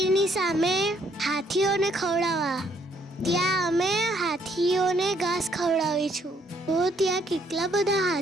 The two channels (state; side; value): normal; both; correlation 0.68